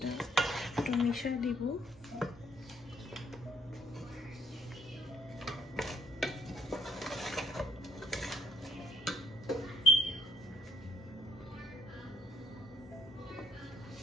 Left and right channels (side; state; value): both; normal; correlation 0.65